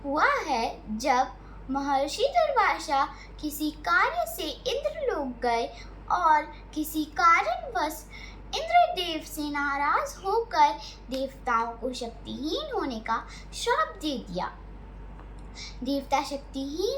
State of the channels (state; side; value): identical; both; correlation 1.00